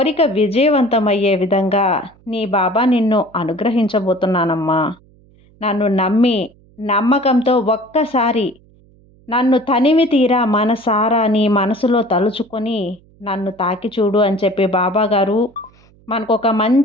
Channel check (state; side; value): noise; right; hum, 29 dB below the sound